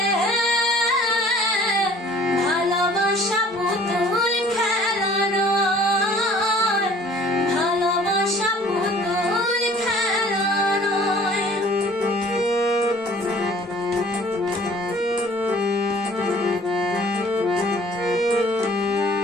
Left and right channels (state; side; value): normal; both; correlation 0.52